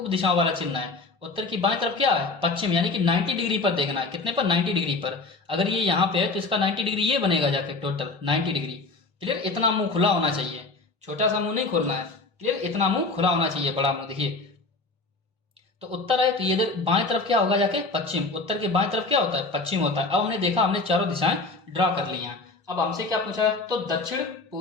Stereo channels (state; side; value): quieter; right; 3.6 dB